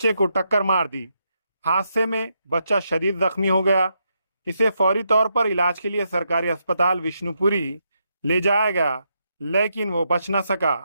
को टक्कर मार दी। हादसे में बच्चा शदीद जख्मी हो गया। इसे फौरी तौर पर इलाज के लिए सरकारी अस्पताल विष्णुपुरी ले जाया गया, लेकिन वो बच न सका।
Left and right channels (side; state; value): both; inverted; correlation -0.81